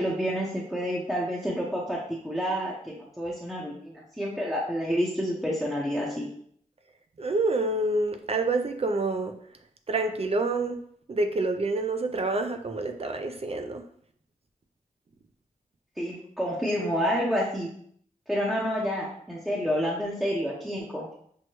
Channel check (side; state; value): both; normal; correlation 0.64